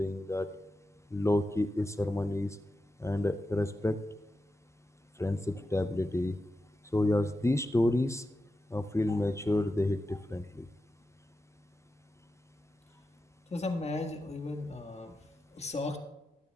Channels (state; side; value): normal; both; correlation 0.90